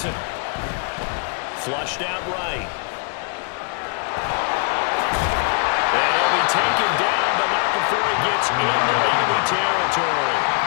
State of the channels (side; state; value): right; quieter; 38.6 dB